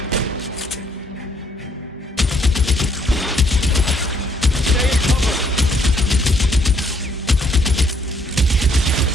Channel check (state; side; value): normal; both; correlation 0.67